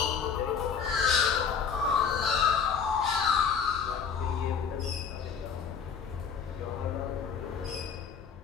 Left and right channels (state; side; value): quieter; right; 6.6 dB